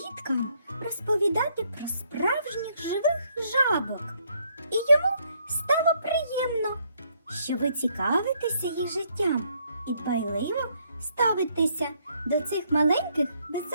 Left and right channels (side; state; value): both; inverted; correlation -0.70